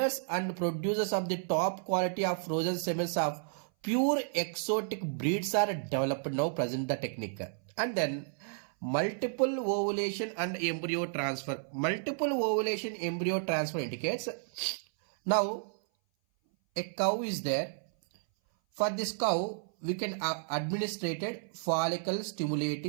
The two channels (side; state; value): left; silent; 56 dB below the other